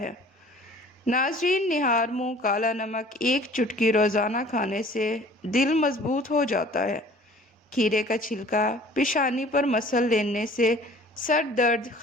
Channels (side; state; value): both; normal; correlation 0.50